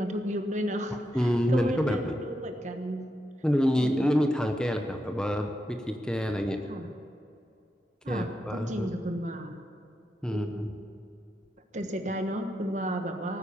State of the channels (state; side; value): normal; both; correlation 0.85